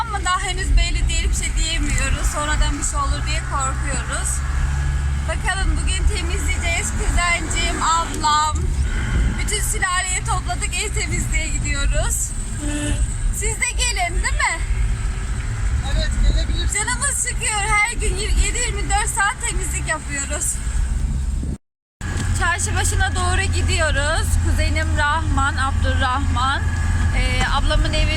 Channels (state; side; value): identical; both; correlation 1.00